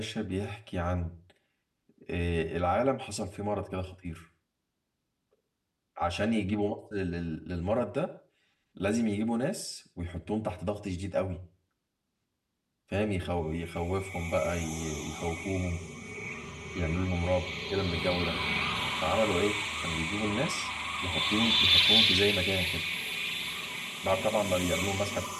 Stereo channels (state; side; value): identical; both; correlation 1.00